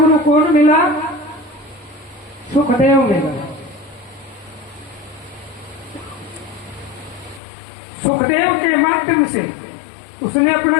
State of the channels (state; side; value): drops out; right; at 7.4 s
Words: कौन मिला? सुखदेव मिला। सुखदेव के माध्यम से उसने